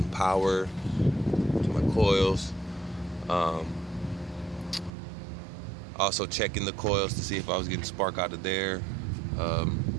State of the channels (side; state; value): left; drops out; at 4.9 s